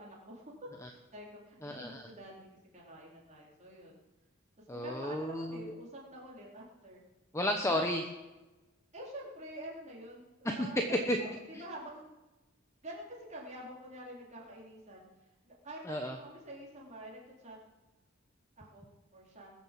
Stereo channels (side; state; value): both; normal; correlation 0.43